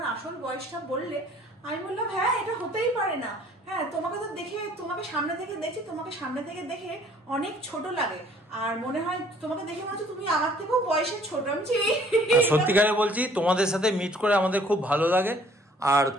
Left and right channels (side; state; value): both; normal; correlation 0.57